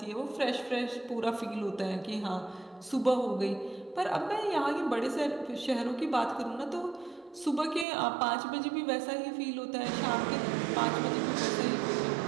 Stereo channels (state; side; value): drops out; left; at 7.9 s